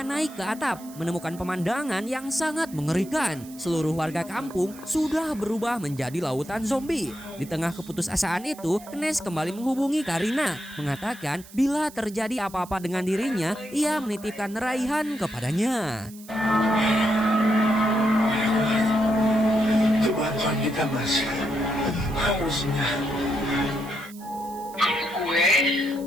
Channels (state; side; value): noise; right; hiss, 20 dB below the sound